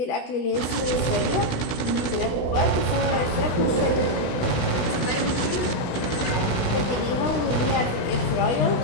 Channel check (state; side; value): late; right; 16 ms